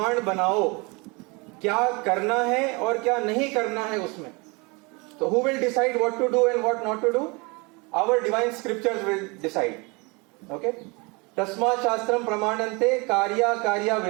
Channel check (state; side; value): quieter; left; 28.1 dB